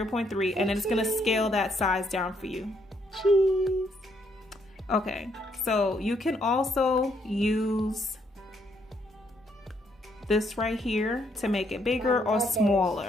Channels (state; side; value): normal; both; correlation 0.72